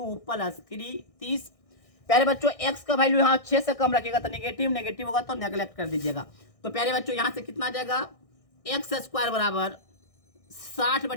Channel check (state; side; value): late; right; 1.6 ms